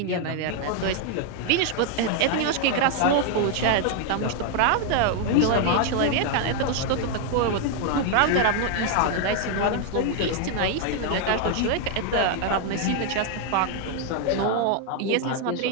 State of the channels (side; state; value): both; different; correlation 0.01